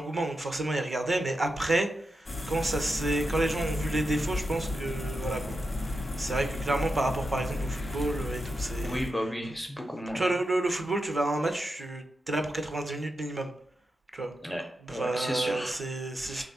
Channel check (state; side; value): normal; both; correlation 0.88